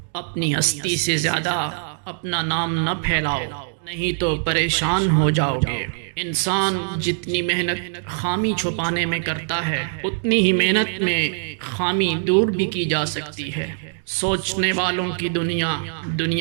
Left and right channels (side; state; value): left; silent; 64 dB below the other